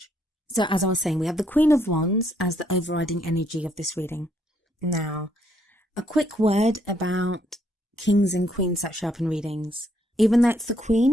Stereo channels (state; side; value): normal; both; correlation 0.71